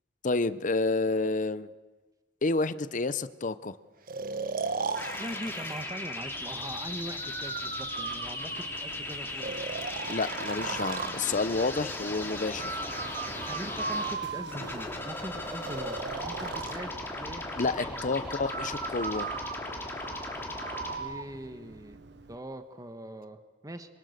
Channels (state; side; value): normal; both; correlation 0.08